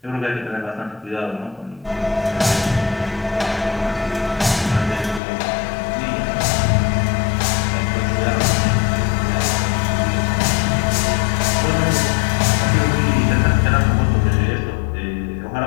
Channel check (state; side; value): drops out; right; at 5.2 s